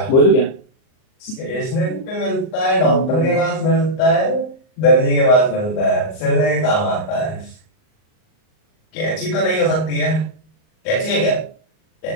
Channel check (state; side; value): late; right; 38 ms